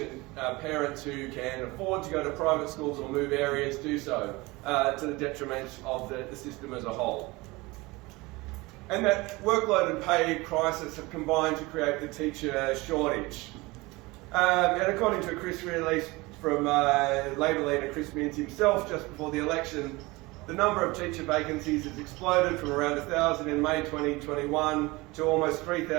Parents who can afford to go to private schools or move areas do so to the detriment of the system as a whole. And that workload and pay crisis have combined to create the teacher shortage. And according to a Chris release from Labor leader Chris Minns himself just before the election, the number of teacher vacancies has exploded from around 1,000 in May 2021 to almost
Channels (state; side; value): quieter; left; 22.7 dB